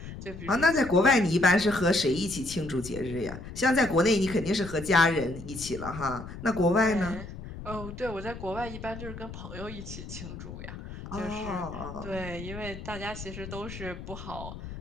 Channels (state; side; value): noise; left; rumble, 11 dB below the sound